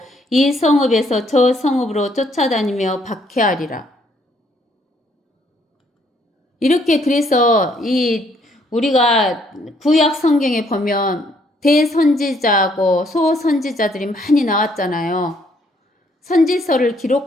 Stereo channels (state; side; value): normal; both; correlation 0.68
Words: 이 성읍에서 저 성읍으로 쫓아다니며 박해하리라. 이렇게 그래서 우리가 구약 성경에 보면 대선지자하고 소선지자들이 많이 나왔잖아요. 선지서를